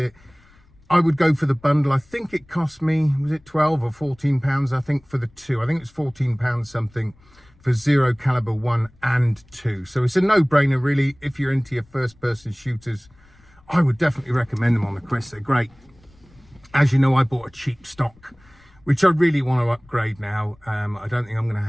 I would go for the bundle. I think it cost me, was it 12 or 14 pounds? I think for the two, I think it's 14 pounds something for Zero Caliber 1 and 2. So it's a no-brainer, really. If you're into your first-person shooters, I would definitely recommend them on the Quest. They're great. As you know, I bought a cheap stock, which I really want to upgrade now. I don't think I'm going to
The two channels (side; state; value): left; noise; rumble, 29 dB below the sound